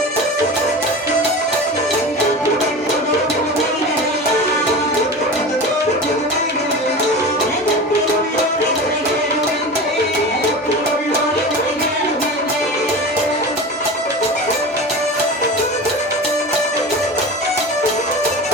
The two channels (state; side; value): normal; both; correlation 0.30